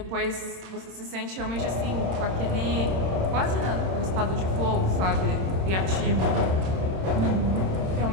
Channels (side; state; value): left; late; 26 ms